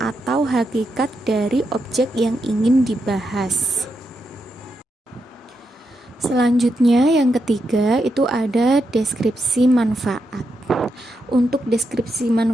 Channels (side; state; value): both; normal; correlation 0.84